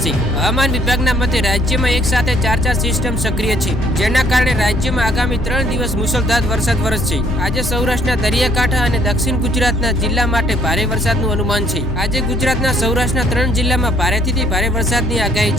હવામાન વિભાગના મતે રાજ્યમાં એક સાથે 4 સિસ્ટમ સક્રિય છે, જેના કારણે રાજ્યમાં આગામી 3 દિવસ મુશળધાર વરસાદ વરસશે. આજે સૌરાષ્ટ્રના દરિયાકાંઠા અને દક્ષિણ ગુજરાતના જિલ્લા માટે ભારે વરસાદનું અનુમાન છે. આજે ગુજરાતના સૌરાષ્ટ્રના 3 જિલ્લામાં ભારેથી ભારે વરસાદની આગાહી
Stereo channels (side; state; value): both; normal; correlation 0.63